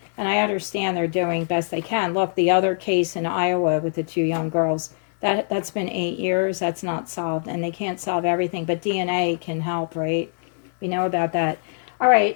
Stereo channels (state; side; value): silent; right; digital silence